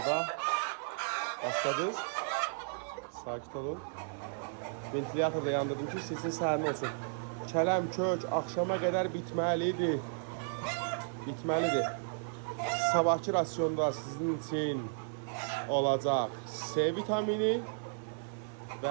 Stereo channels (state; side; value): silent; left; 55 dB below the other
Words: başladınız. Sakit olun. Ventilatorda yandırdım ki, sizin sərin olsun. Kələm, kök axşama qədər bitməlidir. Sabahki rasyonda sizin için olacaq C vitamini